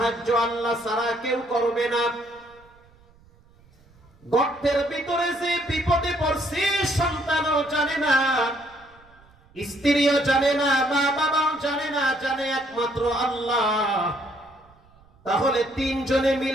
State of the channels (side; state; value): right; noise; rumble, 29 dB below the sound